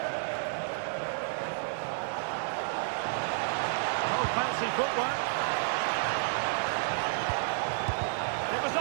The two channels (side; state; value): left; silent; digital silence